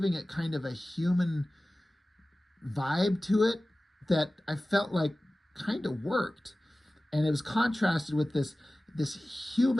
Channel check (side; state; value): both; normal; correlation 0.97